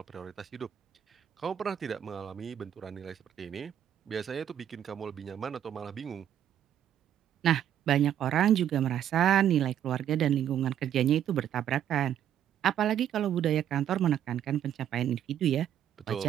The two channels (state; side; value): quieter; left; 10.2 dB